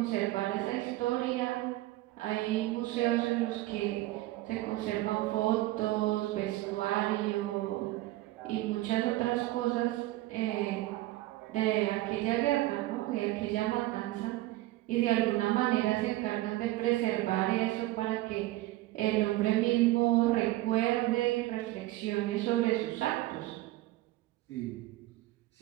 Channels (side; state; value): left; quieter; 17.6 dB